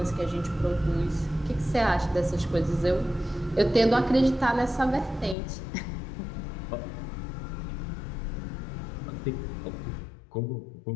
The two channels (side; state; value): right; drops out; at 5.4 s